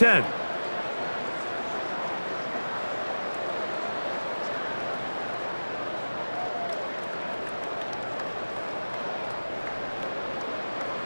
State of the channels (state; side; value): inverted; both; correlation -1.00